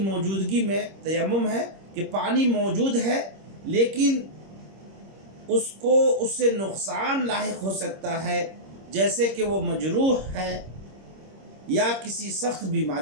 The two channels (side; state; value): left; late; 26 ms